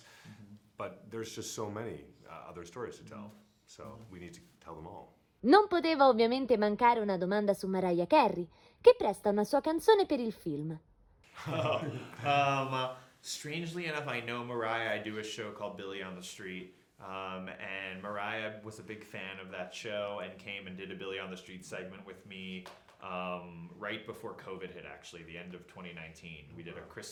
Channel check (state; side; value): identical; both; correlation 1.00